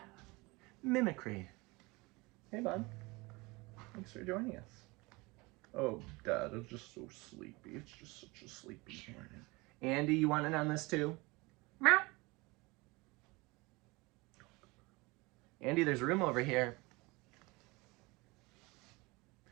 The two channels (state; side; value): quieter; left; 24.4 dB